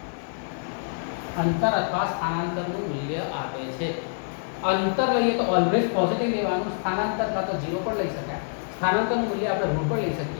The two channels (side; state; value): right; silent; 61 dB below the other